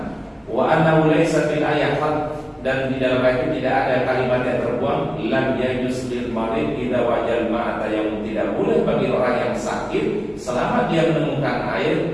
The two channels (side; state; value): both; identical; correlation 1.00